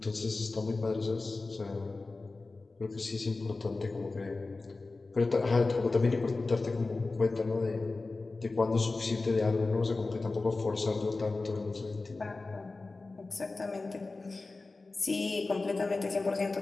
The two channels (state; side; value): quieter; right; 3.5 dB